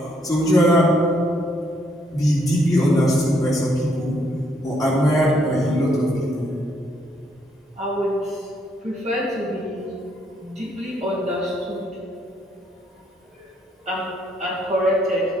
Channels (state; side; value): normal; both; correlation 0.72